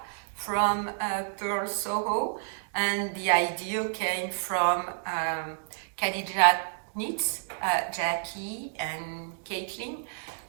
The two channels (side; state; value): left; silent; digital silence